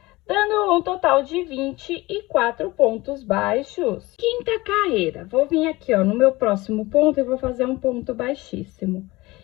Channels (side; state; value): right; quieter; 20.7 dB